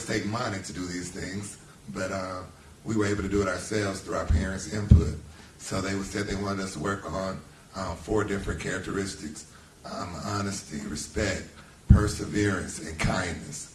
take money to do these things, but we were able to do it ourselves through our parents' input. So they said they wanted us to work on 4 different characteristics: honesty, respect, perseverance, and kindness.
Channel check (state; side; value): identical; both; correlation 1.00